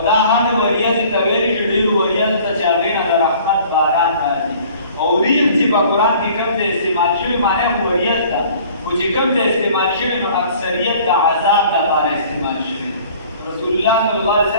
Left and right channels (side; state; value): both; inverted; correlation -0.51